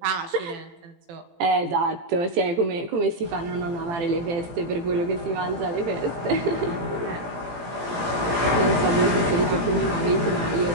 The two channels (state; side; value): late; left; 18 ms